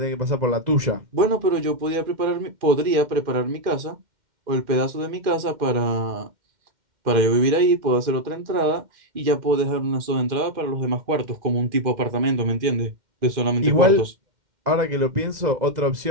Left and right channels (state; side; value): late; left; 2.1 ms